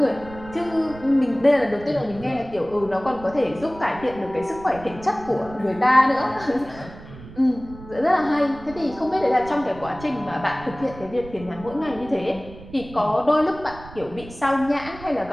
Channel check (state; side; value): noise; right; rumble, 17 dB below the sound